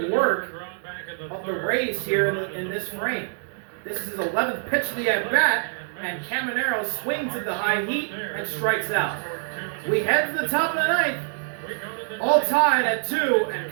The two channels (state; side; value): silent; left; digital silence